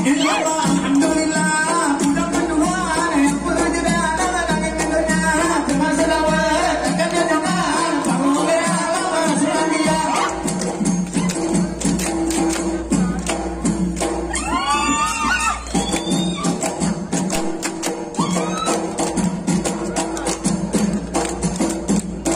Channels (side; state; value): both; identical; correlation 1.00